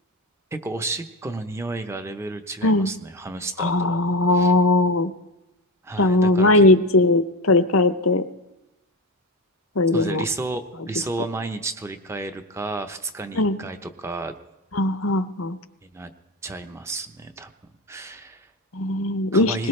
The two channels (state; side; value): normal; both; correlation 0.19